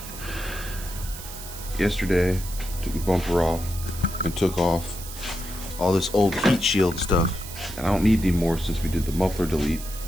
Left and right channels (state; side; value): noise; right; hiss, 12 dB below the sound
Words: Yesterday, took the bumper off and took off all this old heat shield stuff. And I don't need any more since we did the muffler delete.